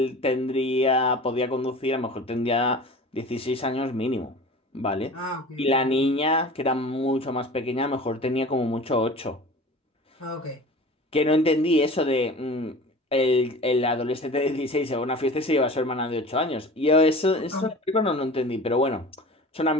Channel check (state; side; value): normal; both; correlation 0.38